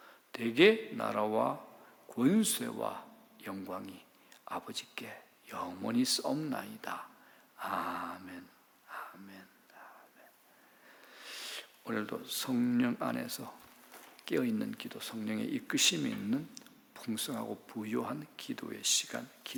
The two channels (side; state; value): both; identical; correlation 1.00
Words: 대개 나라와 권세와 영광이 아버지께 영원히 싸움나이다. 아멘. 아멘. 아멘. 오늘도 성령 안에서 깨어있는 기도, 성령의 이끄심이 있는 풍성하고 부요한 기도의 시간,